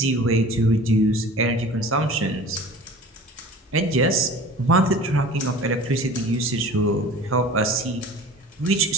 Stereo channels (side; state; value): both; normal; correlation 0.41